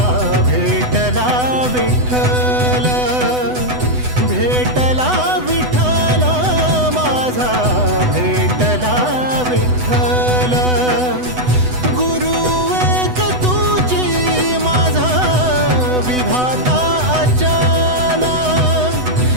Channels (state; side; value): late; left; 8.0 ms